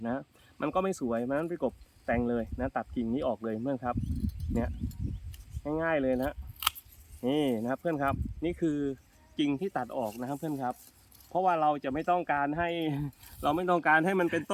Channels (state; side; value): identical; both; correlation 1.00